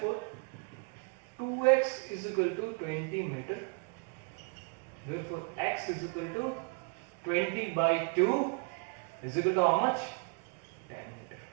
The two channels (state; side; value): quieter; left; 35.1 dB